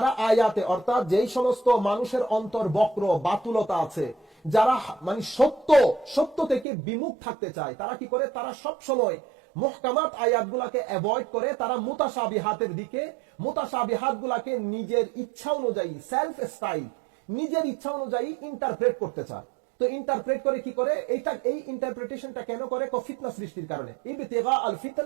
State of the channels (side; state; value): left; drops out; at 6.7 s